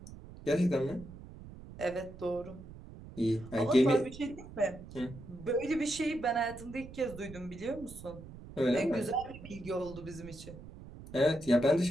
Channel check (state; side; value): noise; right; rumble, 15 dB below the sound